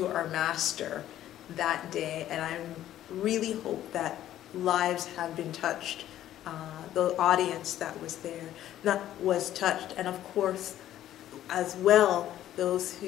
our master that day, and I really hope that lives have been touched. The audience that was there was touched, and of course, as well, those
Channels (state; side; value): quieter; right; 12.5 dB